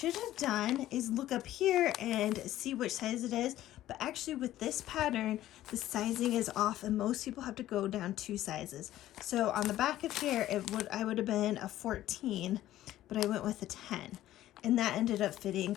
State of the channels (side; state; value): right; quieter; 13.9 dB